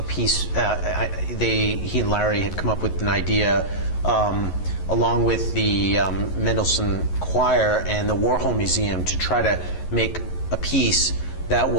piece. He and Larry had come up with an idea along with the Mendelssohn Choir and the Warhol Museum to try to make a piece that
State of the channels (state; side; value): late; right; 11 ms